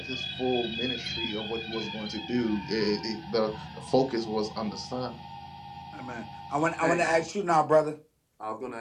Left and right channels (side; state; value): both; identical; correlation 1.00